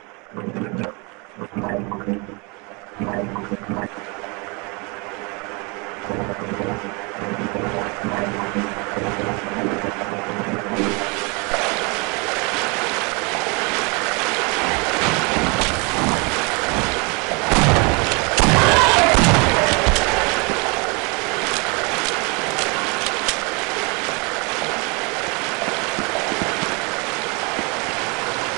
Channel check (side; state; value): left; quieter; 30.5 dB